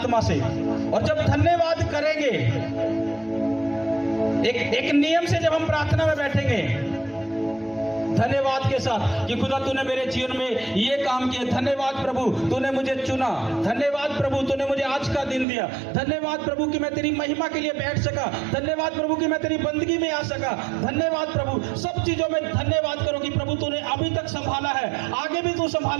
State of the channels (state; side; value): drops out; left; at 15.5 s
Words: से। और जब धन्यवाद करेंगे, एक नियम से जब हम प्रार्थना में बैठेंगे धन्यवाद के साथ कि खुदा तूने मेरे जीवन में ये काम किया, धन्यवाद प्रभु तूने मुझे चुना, धन्यवाद प्रभु तूने मुझे आज का दिन दिया, धन्यवाद प्रभु कि मैं तेरी महिमा के लिए बैठ सका, धन्यवाद प्रभु कि मैं तेरी बंदगी में आ सका, धन्यवाद प्रभु। सब चीजों में धन्यवाद करो कि प्रभु तूने अभी तक संभाला है, आगे भी तू